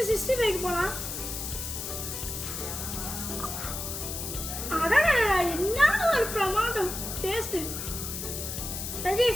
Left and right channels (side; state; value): left; noise; hiss, 6 dB below the sound